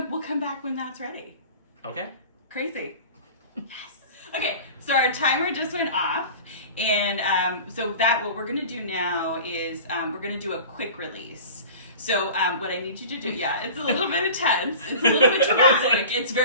back when that's ready. Okay. Crazy. Yes. Okay, so our timer just went off, and so what we're gonna do now is we're gonna do a quick release. So what I need you to do, it's a little bit intense. It's a little bit dramatic. It's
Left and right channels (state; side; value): inverted; both; correlation -0.38